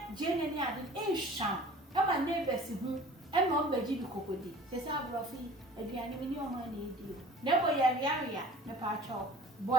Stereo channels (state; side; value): normal; both; correlation 0.45